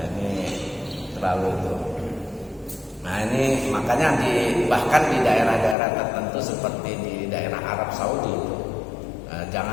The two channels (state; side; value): drops out; right; at 5.8 s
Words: ini terlalu itu. Nah ini makanya bahkan di daerah-daerah tertentu seperti di daerah Arab Saudi itu,